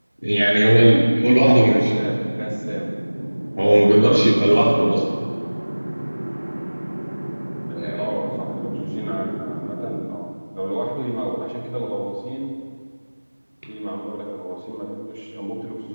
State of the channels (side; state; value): both; inverted; correlation -1.00